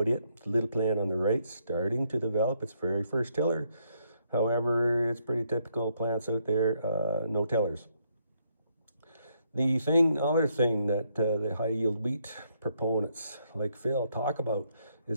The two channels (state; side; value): inverted; both; correlation -0.74